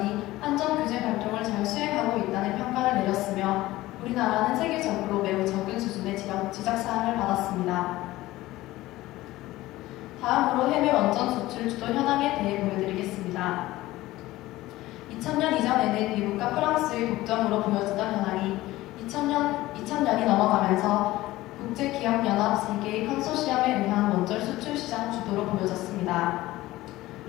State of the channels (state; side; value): quieter; right; 17.3 dB